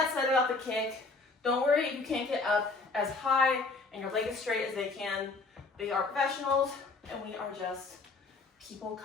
said about the kick, don't worry if you can't get up as high and your leg as straight as they can. They are professionals, and we are just people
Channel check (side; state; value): right; quieter; 3.8 dB